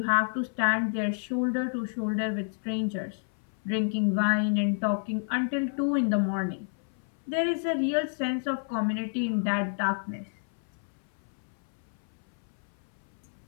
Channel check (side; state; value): right; silent; 58 dB below the other